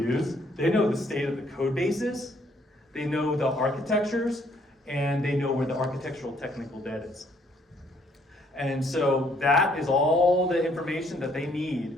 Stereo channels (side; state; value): both; normal; correlation 0.66